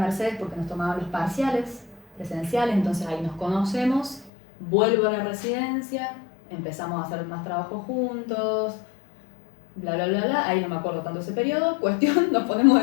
porque nos tomaban los parciales presenciales, entonces ahí nos conocemos. Vuelvo a la residencia, empezamos a hacer más trabajo juntos, bla, bla, bla, bla. Ahí no me acuerdo tanto ese periodo. Cuestión, nos ponemos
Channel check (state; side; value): drops out; right; at 4.3 s